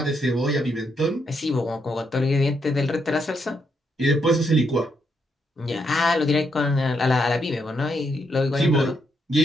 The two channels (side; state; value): both; normal; correlation 0.78